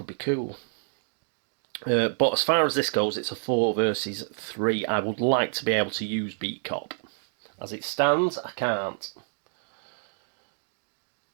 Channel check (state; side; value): silent; left; digital silence